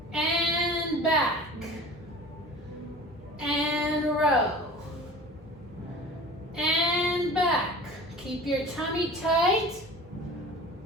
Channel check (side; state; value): both; normal; correlation 0.39